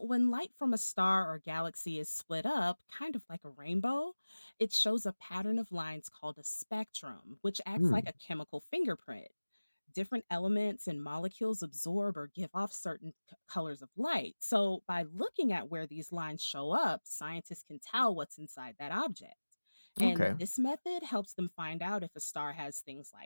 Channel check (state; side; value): inverted; both; correlation -1.00